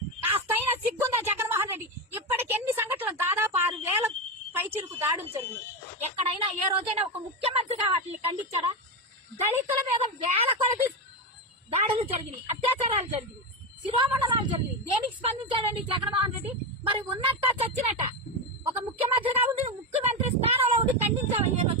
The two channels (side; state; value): both; normal; correlation 0.13